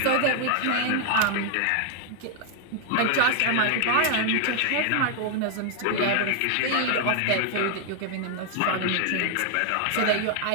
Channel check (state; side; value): different; both; correlation 0.00